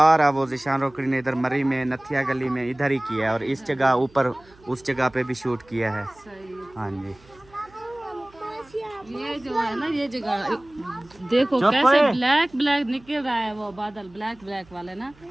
वो ज़ीशान रोकड़ी ने इधर मरी में नथिया गली में इधर ही किया है और इस जगह ऊपर उस जगह पे भी शूट किया है। सही है। हाँ जी, ये जो है ना ये जगह देखो चुप कैसे है। ब्लैक ब्लैक निकल रहा है वो बादल ब्लैक ब्लैक वाले ना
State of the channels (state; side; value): noise; right; hum, 27 dB below the sound